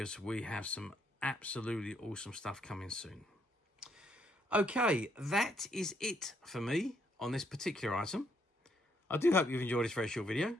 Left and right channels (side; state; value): both; normal; correlation 0.72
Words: we have some absolutely awesome stuff coming soon. Okay, that is it for me on this particular item. I do hope you've enjoyed this very short video.